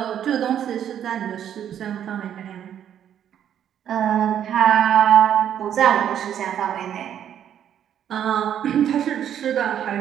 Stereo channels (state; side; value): quieter; left; 9.8 dB